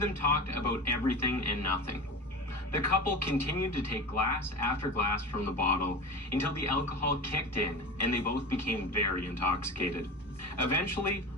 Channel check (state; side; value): normal; both; correlation 0.30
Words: them talked about everything and nothing. The couple continued to take glass after glass from the bottle until the alcohol kicked in and they both became very intoxicated. Eventually,